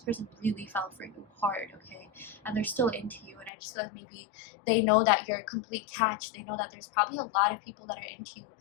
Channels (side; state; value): right; drops out; at 3.5 s